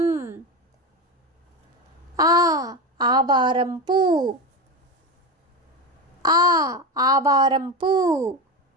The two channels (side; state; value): both; normal; correlation 0.19